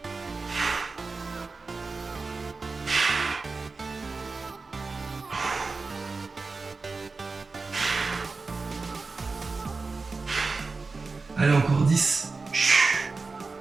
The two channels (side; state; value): left; quieter; 4.0 dB